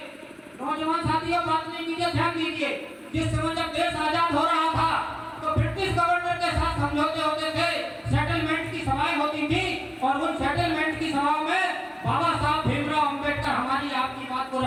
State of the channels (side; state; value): both; identical; correlation 1.00